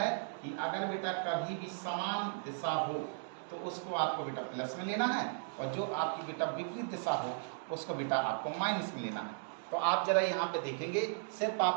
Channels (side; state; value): left; silent; digital silence